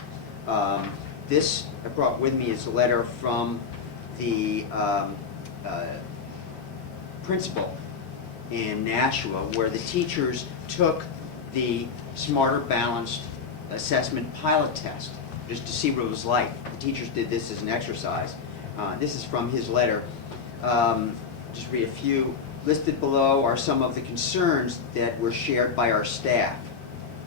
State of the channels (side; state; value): right; quieter; 5.7 dB